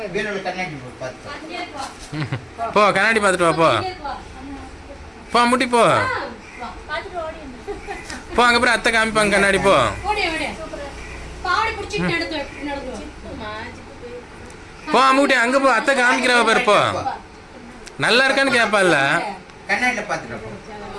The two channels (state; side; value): identical; both; correlation 1.00